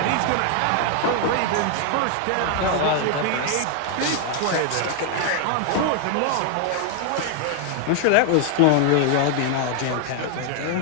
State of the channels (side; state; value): both; different; correlation 0.00